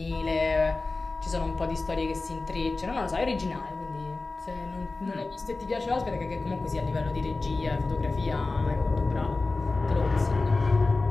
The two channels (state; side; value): quieter; right; 3.5 dB